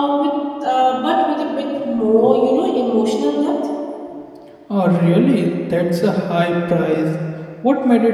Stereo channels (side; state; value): both; identical; correlation 1.00